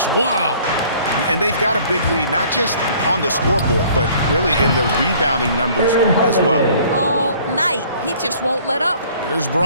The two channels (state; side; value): inverted; both; correlation -0.55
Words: Wow. And they've got a big lead, not just on the scoreboard, but really in the rebounding numbers as well. All night. He just won't let up. Here's